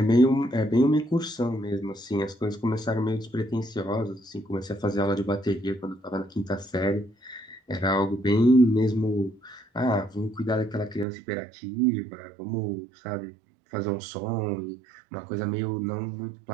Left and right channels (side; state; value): left; drops out; at 11.1 s